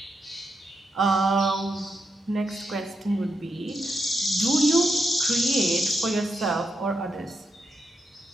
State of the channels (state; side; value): normal; both; correlation 0.83